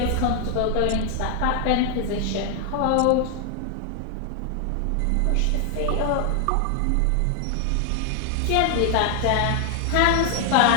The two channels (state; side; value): different; both; correlation 0.00